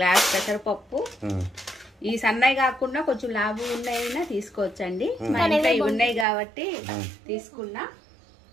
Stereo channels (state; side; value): drops out; left; at 6.2 s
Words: గ్లాస్ పెసరపప్పు. ఈ సన్నవి కాకుండా కొంచెం లాభం ఉన్నాయినా తీసుకోవచ్చండి. మా ఇంట్లో ఇవి ఉన్నాయి కాబట్టి తీసుకున్నా.